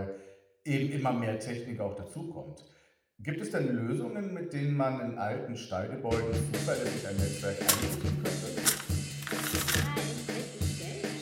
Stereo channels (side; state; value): both; identical; correlation 1.00